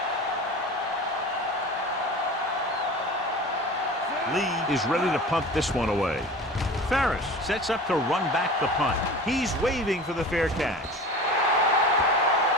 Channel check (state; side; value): normal; both; correlation 0.36